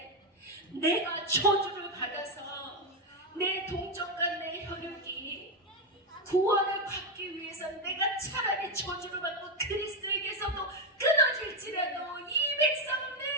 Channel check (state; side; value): normal; both; correlation 0.06